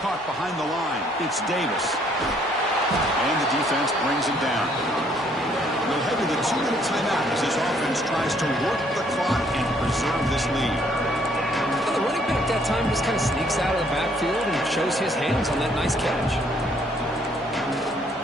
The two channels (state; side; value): normal; both; correlation 0.65